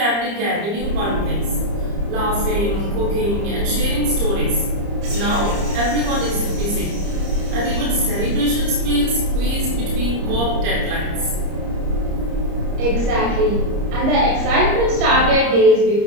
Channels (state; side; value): late; left; 30 ms